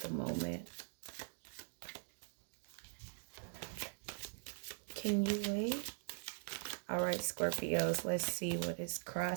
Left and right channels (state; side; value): silent; left; digital silence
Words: moment? Can you wait? All right, Scorpios, let's see what is